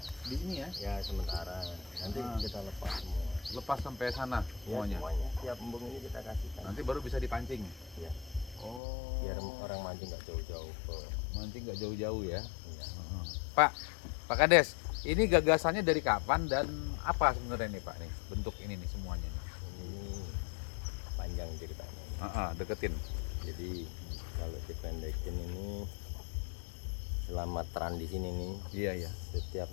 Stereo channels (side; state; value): right; drops out; at 8.8 s